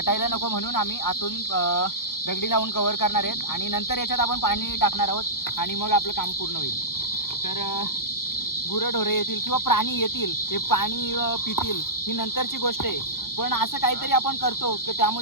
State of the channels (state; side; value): late; right; 0.93 ms